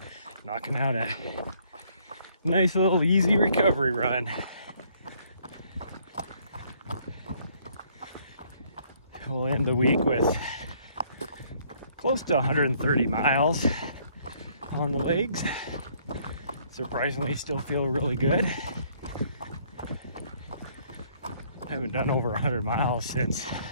knocking out a nice little easy recovery run. We'll end the week with close to 130 miles on the legs. Surprisingly, still feel really good. I haven't done over 100 miles since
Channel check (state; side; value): inverted; both; correlation -0.64